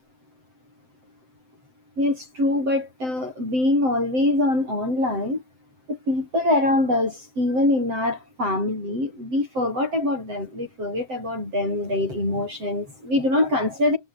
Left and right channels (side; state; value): left; late; 7.8 ms